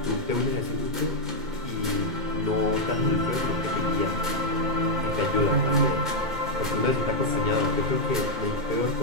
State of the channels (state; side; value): late; left; 2.2 ms